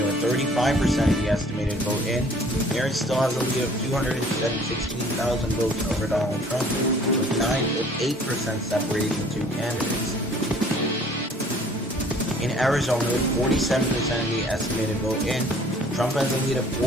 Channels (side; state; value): both; normal; correlation 0.54